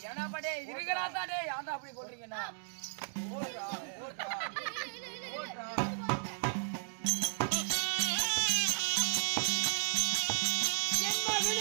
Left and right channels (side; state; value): left; silent; digital silence